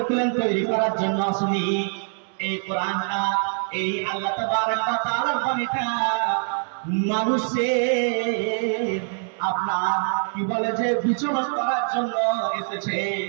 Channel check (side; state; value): left; silent; 59 dB below the other